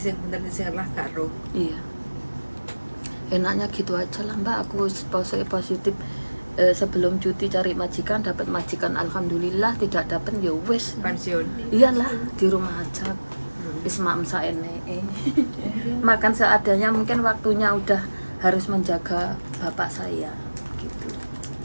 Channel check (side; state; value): both; inverted; correlation -1.00